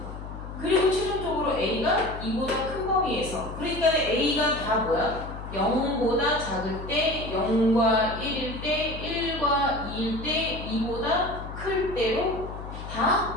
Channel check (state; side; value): noise; left; hum, 10 dB below the sound